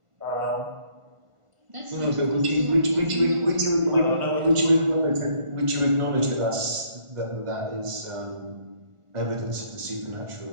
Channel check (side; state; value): left; late; 1.4 ms